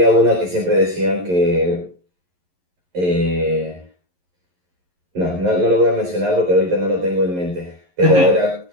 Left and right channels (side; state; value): left; late; 11 ms